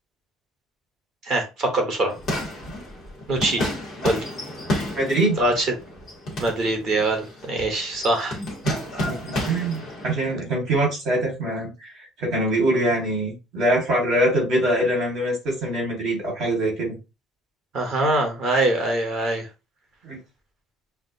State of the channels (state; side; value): normal; both; correlation 0.53